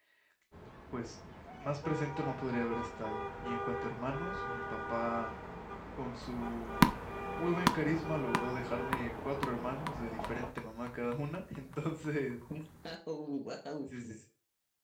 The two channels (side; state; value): both; identical; correlation 1.00